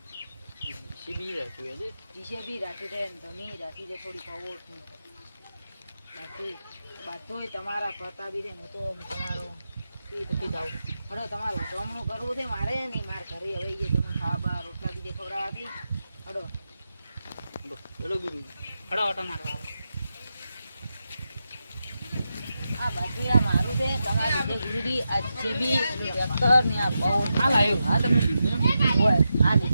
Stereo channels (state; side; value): inverted; both; correlation -0.88